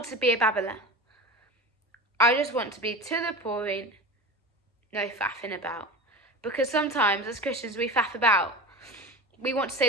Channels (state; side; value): normal; both; correlation 0.30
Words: to be a babbler. I just want to be to the point, no faffing about. Because sometimes as Christians we faff about. We want to